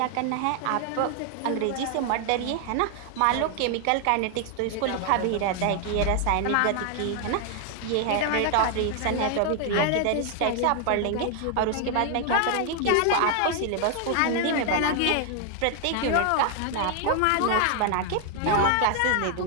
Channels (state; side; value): different; both; correlation 0.00